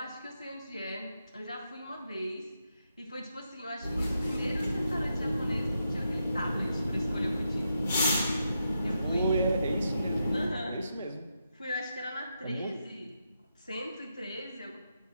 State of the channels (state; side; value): inverted; both; correlation -0.84